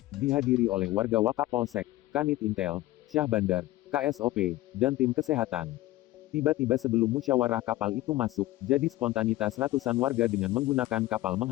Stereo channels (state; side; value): quieter; right; 16.7 dB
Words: dihadiri oleh warga Wakapolsek, Kanit Intel, Syah Bandar, KSOP, dan tim kesehatan. Tiba-tiba sebelum musyawarah kapal itu masuk, jadi spontanitas ratusan warga dengan menggunakan kapal